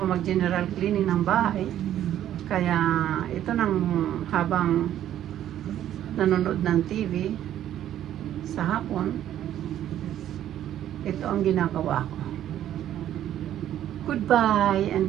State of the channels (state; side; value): quieter; left; 11.6 dB